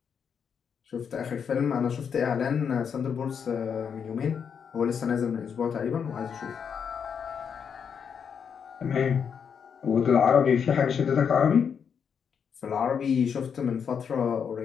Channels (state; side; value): quieter; right; 7.0 dB